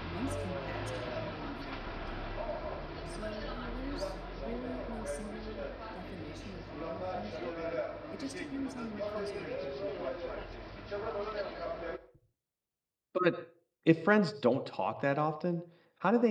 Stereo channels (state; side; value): identical; both; correlation 1.00